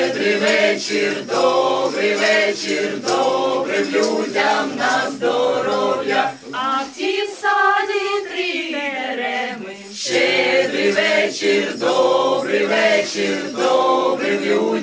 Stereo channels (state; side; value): identical; both; correlation 1.00